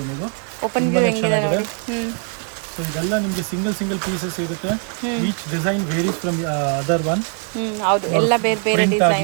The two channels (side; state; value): left; quieter; 39.9 dB